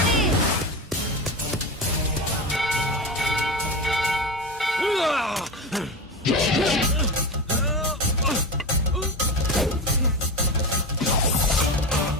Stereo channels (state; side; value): normal; both; correlation 0.22